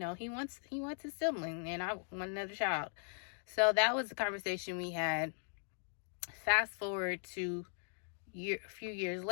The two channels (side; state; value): right; silent; 52 dB below the other